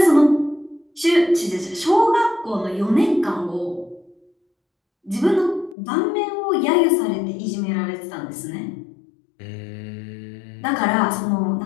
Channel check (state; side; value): drops out; right; at 5.8 s